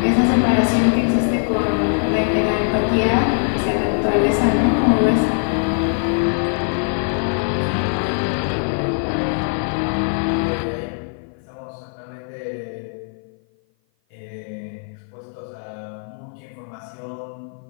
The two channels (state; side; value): silent; right; 56 dB below the other